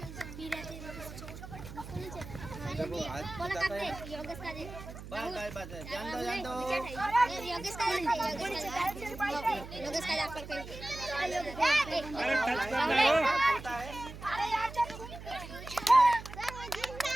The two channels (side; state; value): right; noise; hum, 12 dB below the sound